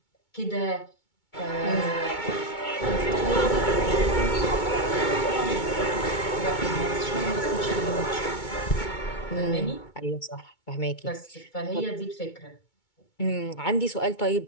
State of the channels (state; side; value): late; right; 2.2 ms